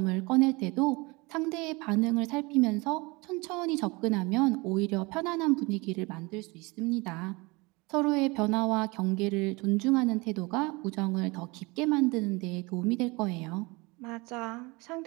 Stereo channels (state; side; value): quieter; left; 25.4 dB